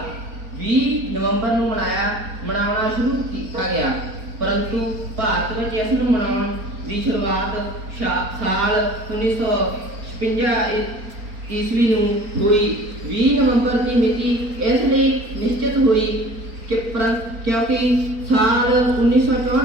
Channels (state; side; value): late; left; 4.4 ms